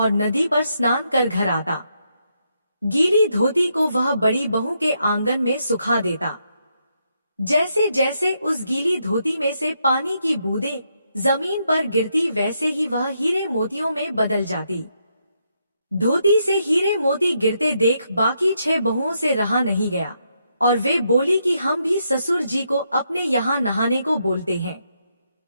नदी पर स्नान कर घर आता। गीली धोती को वह बड़ी बहू के आंगन में सुखा देता। जैसे जैसे उस गीली धोती में से पानी की बूंदें जमीन पर गिरती, वैसे ही वह हीरे मोतियों में बदल जाती। धोती से हीरे मोती गिरते देख बाकी 6 बहुओं से रहा नहीं गया और वे बोली कि हम भी ससुर जी को अपने यहाँ नहाने को बोलते हैं।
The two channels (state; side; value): inverted; both; correlation -0.79